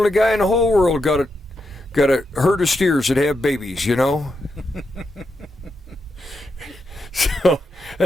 guy in the whole world got a herd of steers that have babies, you know? So,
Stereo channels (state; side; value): normal; both; correlation 0.84